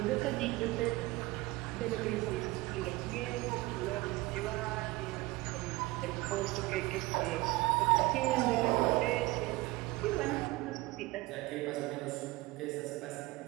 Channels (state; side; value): quieter; left; 20.4 dB